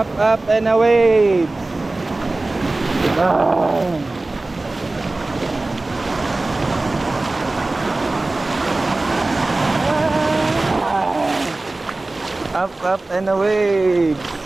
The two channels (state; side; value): quieter; left; 3.0 dB